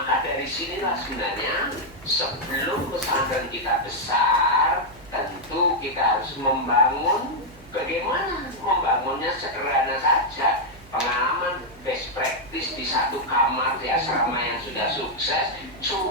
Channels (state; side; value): noise; right; hum, 23 dB below the sound